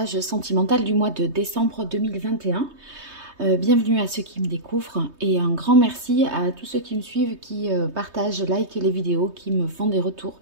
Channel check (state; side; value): late; left; 3.2 ms